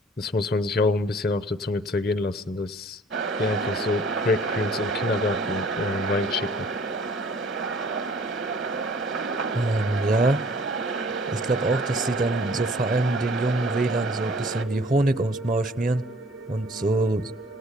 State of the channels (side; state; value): both; normal; correlation 0.54